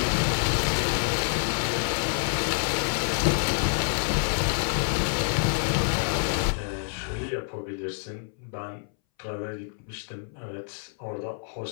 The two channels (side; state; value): right; silent; 60 dB below the other